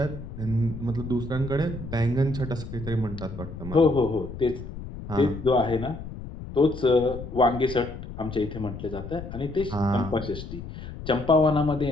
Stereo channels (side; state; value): left; noise; rumble, 10 dB below the sound